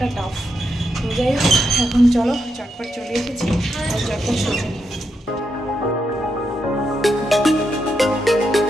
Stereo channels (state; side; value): normal; both; correlation 0.83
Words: টাফ তো যাই হোক এখন চলো চটপট চলে এসেছি আর চটপট সোজা নিই